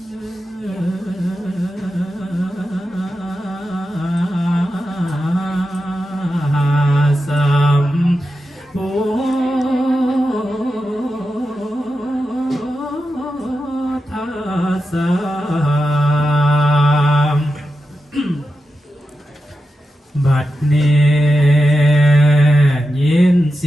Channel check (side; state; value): both; normal; correlation 0.90